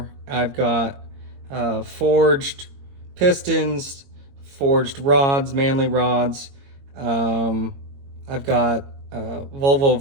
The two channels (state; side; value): late; left; 22 ms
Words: I've got forged pistons, forged rods, manly rods. Um, I've got Volvo